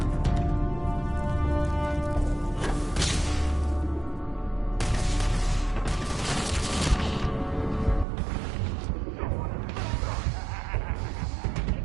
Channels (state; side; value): drops out; left; at 8.1 s